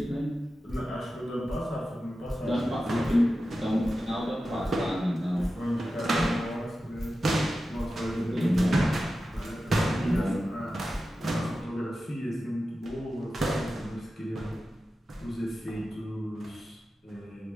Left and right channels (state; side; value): normal; both; correlation 0.93